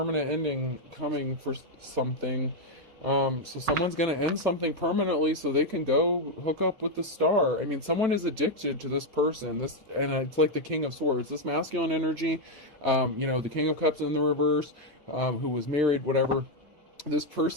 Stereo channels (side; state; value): left; late; 5.8 ms